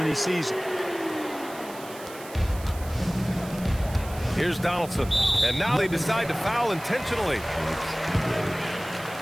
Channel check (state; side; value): noise; right; hiss, 17 dB below the sound